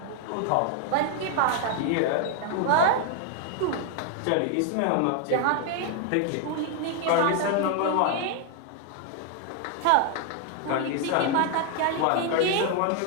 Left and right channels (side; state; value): both; different; correlation 0.00